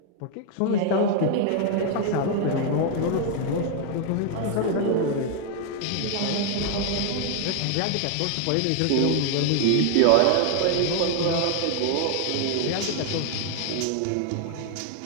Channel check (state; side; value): different; both; correlation 0.00